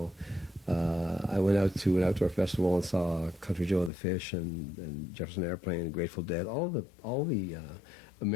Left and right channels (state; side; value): drops out; right; at 3.9 s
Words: I went out to an outdoor festival and saw Country Joe and the Fish and Jefferson Airplane and Grateful Dead. All the